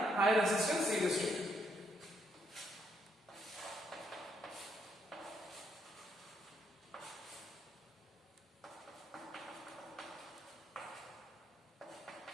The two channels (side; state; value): both; normal; correlation 0.74